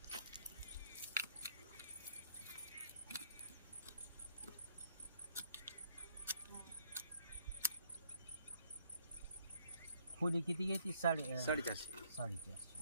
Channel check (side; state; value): both; inverted; correlation -0.66